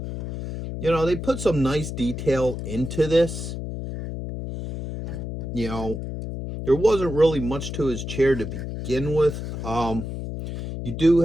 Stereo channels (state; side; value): noise; left; hum, 6 dB below the sound